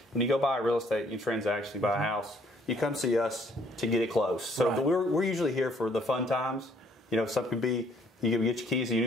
you go buy real estate, you transact, you buy a house, you come see us to get it closed. So Right. we're usually here for the fun times. You know, some could be you can get your keys to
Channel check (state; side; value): normal; both; correlation 0.64